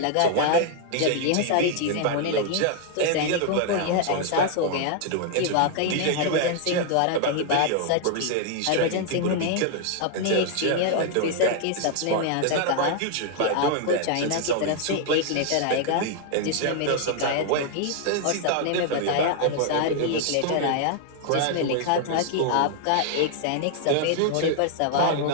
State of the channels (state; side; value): different; both; correlation 0.00